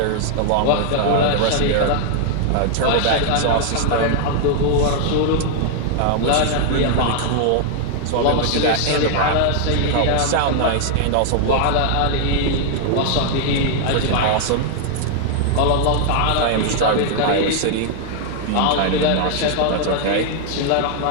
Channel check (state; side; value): different; both; correlation 0.00